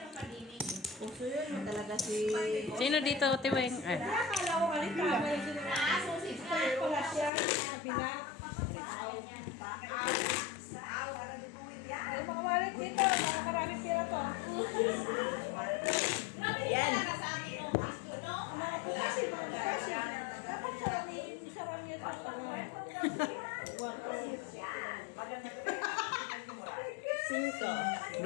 Puso yun talaga si... Sino dito, Tiweng? Akala ko kanina, may bakit para duguin yan. Yung mga wallet dito, mga maraming pira to. Yan. Sa akin yung gusto, no? Ang mga kasi, dapat sarami ito. Yan. Magandang gabi. Cinco.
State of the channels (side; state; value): right; drops out; at 7.3 s